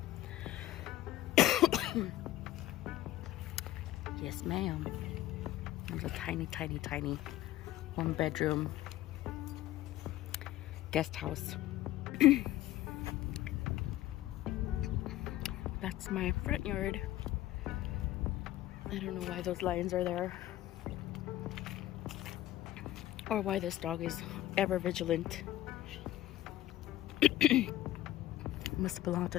Yes, ma'am. There's a tiny, tiny, tiny 1-bedroom guest house. That's my front yard. I don't know why those lions are there, or why this dog is ever vigilant. Must belong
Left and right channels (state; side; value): quieter; right; 14.9 dB